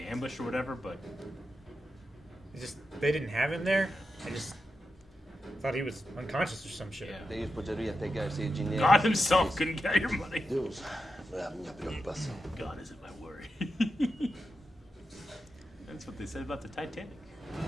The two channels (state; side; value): normal; both; correlation 0.89